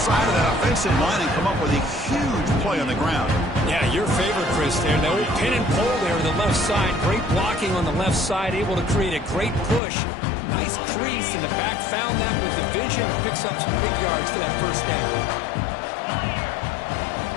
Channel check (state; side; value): drops out; right; at 9.8 s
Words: of that offensive line and come up with a huge play on the ground. Yeah, your favorite, Chris, there. The old pin and pull there on the left side. Great blocking on the left side, able to create a great push. Nice crease, and the back found that with the vision and picks up some big yards for that first down.